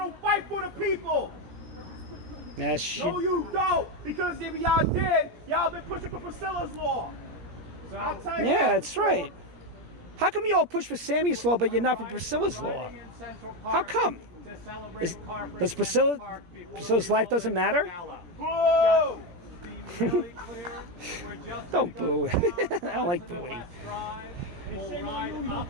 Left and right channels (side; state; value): left; late; 17 ms